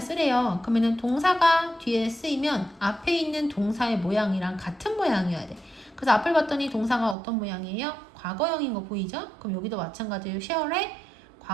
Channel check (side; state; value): left; drops out; at 7.2 s